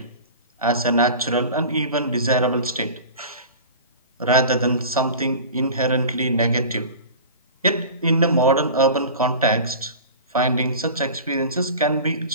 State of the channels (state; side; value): inverted; both; correlation -0.36